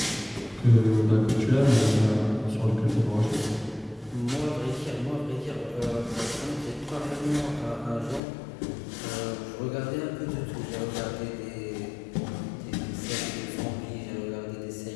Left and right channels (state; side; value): drops out; right; at 8.2 s